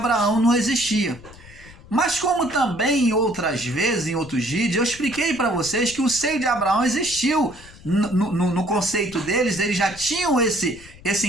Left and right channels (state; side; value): noise; left; rumble, 20 dB below the sound